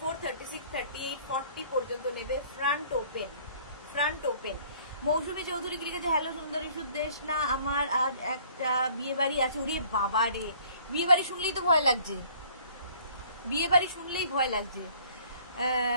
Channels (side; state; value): both; inverted; correlation -0.56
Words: 36, 38, 40 পর্যন্ত নেবে। Front open, front open. Moushumi Chowdhury লিখেছে, হ্যালো সুন্দরী সুদেশ না, আমার আজ একটা বিয়ে বাড়ি আছে। উড়ে বাবা রে, বিয়ে বাড়ি শুনলেই তো ভয় লাগছে, বিয়ে বাড়ি শুনলেই ভয় লাগছে।